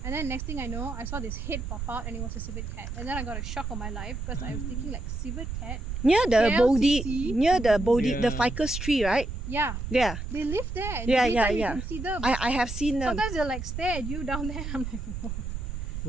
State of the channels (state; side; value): noise; right; rumble, 5 dB below the sound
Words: And then next thing I know, I saw this head pop out, and it was a civet cat. And then I got a shock on my life because I was thinking like civet cat. near the Bodhi, KLCC? near the Bodhi, the Yeah. ficus tree, right? Yeah, Yeah, they live there. And Yeah, every yeah, time yeah. You can see them. I have seen them. Sometimes they'll like stare at you down there. I'm like, whoa.